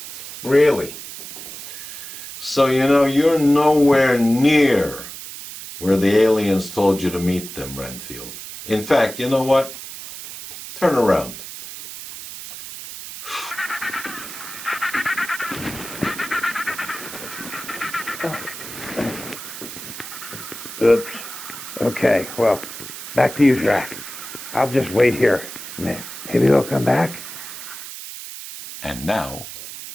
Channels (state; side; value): noise; right; hiss, 11 dB below the sound